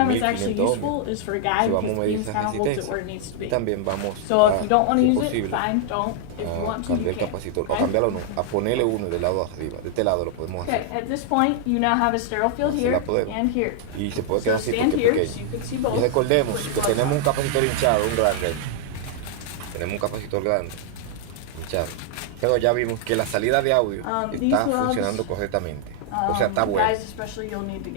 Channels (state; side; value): different; both; correlation 0.00